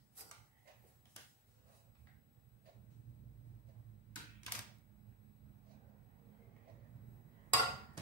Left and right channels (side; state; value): both; normal; correlation -0.02